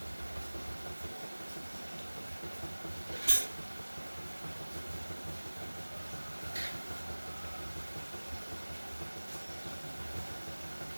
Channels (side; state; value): both; inverted; correlation -1.00